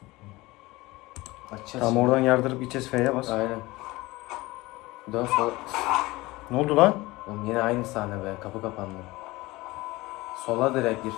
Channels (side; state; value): right; quieter; 20.5 dB